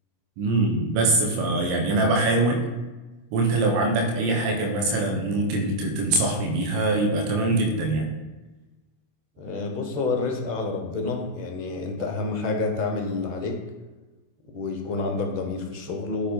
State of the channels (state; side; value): late; left; 26 ms